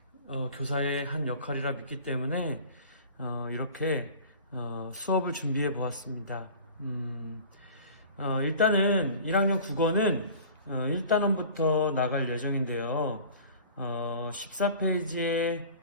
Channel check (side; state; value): both; inverted; correlation -0.43